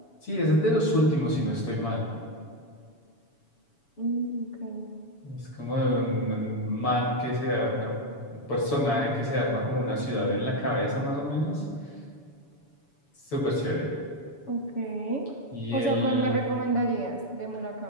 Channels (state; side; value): late; right; 7.0 ms